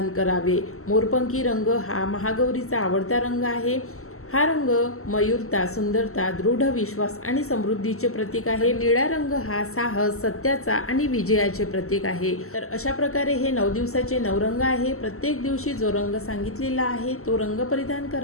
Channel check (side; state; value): right; late; 0.63 ms